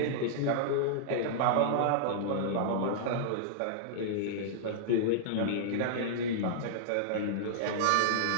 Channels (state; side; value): different; both; correlation -0.01